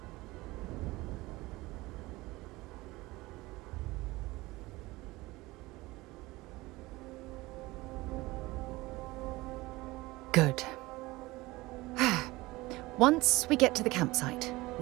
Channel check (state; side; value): quieter; left; 20.5 dB